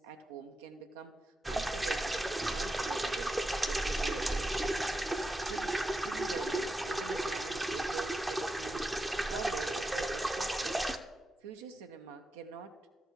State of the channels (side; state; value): both; normal; correlation 0.89